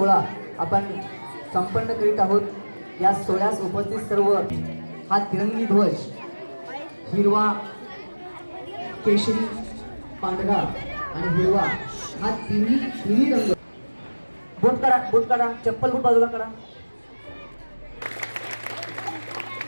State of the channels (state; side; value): inverted; both; correlation -1.00